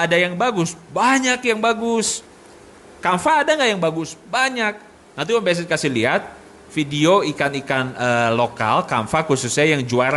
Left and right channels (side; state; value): both; identical; correlation 1.00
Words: ada yang bagus? Banyak yang bagus. Kamfa ada gak yang bagus? Banyak. Nanti Om BZ kasih lihat video ikan-ikan lokal Kamfa khususnya yang